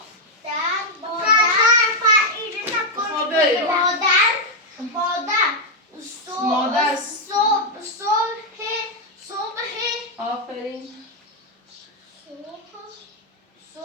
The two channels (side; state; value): both; normal; correlation -0.01